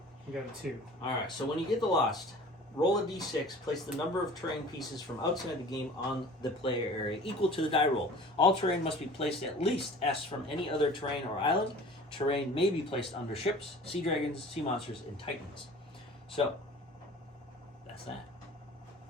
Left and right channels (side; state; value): both; normal; correlation 0.44